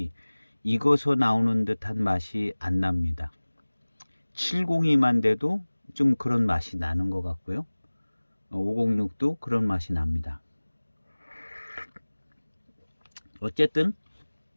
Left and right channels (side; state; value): both; inverted; correlation -1.00